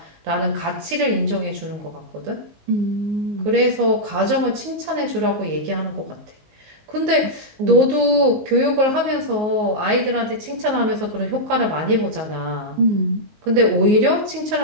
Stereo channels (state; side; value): late; left; 19 ms